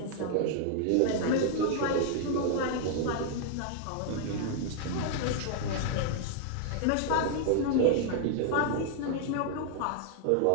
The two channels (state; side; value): different; both; correlation 0.00